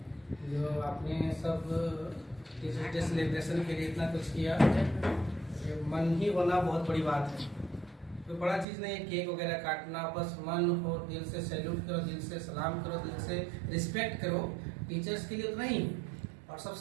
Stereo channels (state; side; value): drops out; left; at 8.7 s